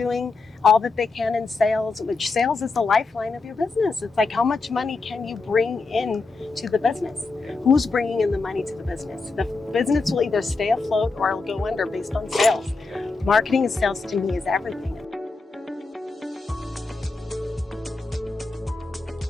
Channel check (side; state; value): right; quieter; 3.9 dB